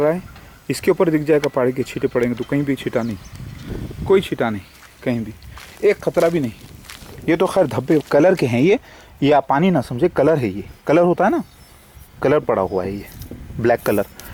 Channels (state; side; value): identical; both; correlation 1.00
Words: है। इसके ऊपर दिख जाएगा पहाड़ी के छींटे पड़ेंगे, तो कहीं भी छींटा नहीं, कोई छींटा नहीं, कहीं भी एक खतरा भी नहीं। ये तो खैर धब्बे कलर के हैं, ये आप पानी ना समझे, कलर है, ये कलर होता है ना, कलर पड़ा हुआ है, ये ब्लैक कलर।